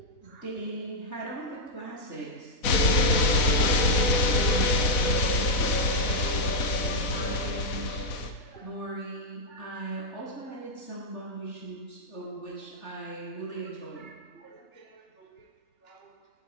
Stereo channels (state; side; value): late; right; 4.0 ms